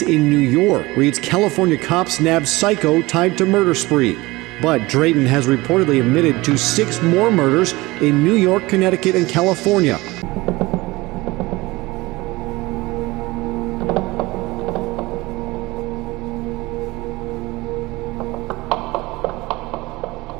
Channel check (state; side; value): quieter; left; 21.1 dB